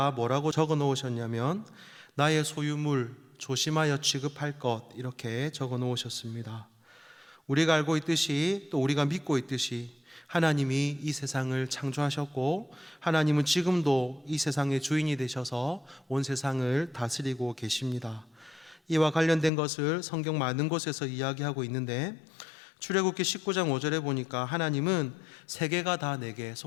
뭐라고 적어 놓으셨냐면 나의 소유물 조심하여 취급할 것 이렇게 적어 놓으셨습니다. 우리가 알고 있듯이 또 우리가 믿고 있듯이 하나님이 이 세상을 창조하셨고 하나님은 지금도 이 세상의 주인이 되셔서 온 세상을 다스리고 계십니다. 이와 관련된 것을 성경 많은 곳에서 이야기하고 있는데 출애굽기 19장 5절에 보니까 하나님은 세계가 다 내게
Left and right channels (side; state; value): right; drops out; at 19.5 s